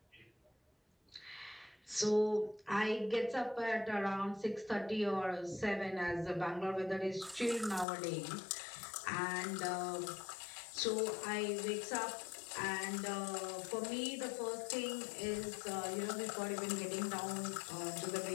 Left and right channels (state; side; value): drops out; right; at 7.9 s